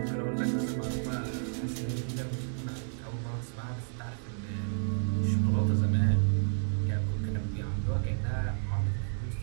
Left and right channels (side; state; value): left; silent; 57 dB below the other